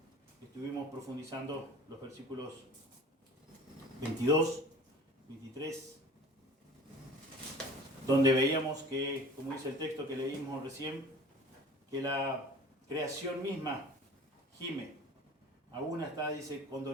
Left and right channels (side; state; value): both; normal; correlation 0.43